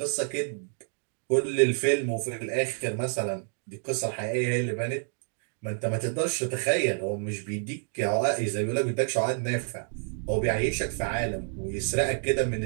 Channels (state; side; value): silent; left; 59 dB below the other